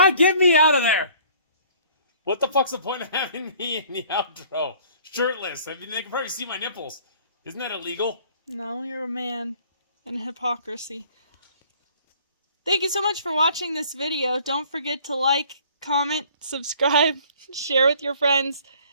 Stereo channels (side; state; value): both; inverted; correlation -0.54